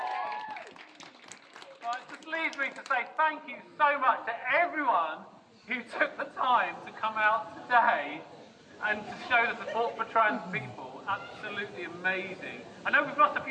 Well, it just leaves me to say thank you so much to everyone who took the time to come out today and to show the support for trans people. Absolutely amazing. I know we've lost a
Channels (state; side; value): identical; both; correlation 1.00